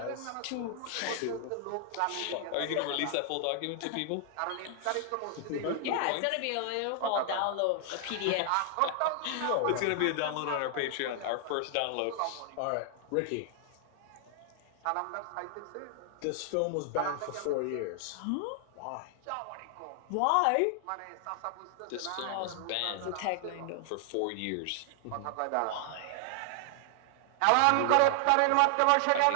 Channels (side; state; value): both; different; correlation 0.00